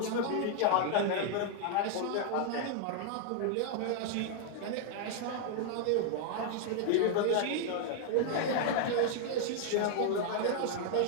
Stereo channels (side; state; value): both; different; correlation 0.00